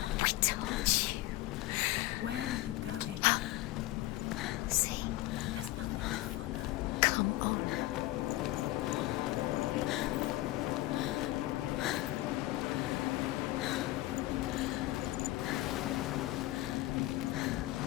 I told you. Where are you going? See? There's nothing to follow. Come on.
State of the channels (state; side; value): quieter; right; 17.6 dB